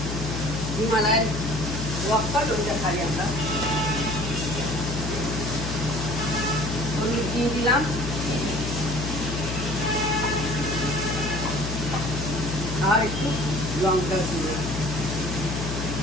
হিমালয়ের রক সল্ট, ওইটা খাই আমরা। হলুদ দিয়ে দিলাম, আর একটু লঙ্কা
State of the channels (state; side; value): noise; left; hum, 4 dB below the sound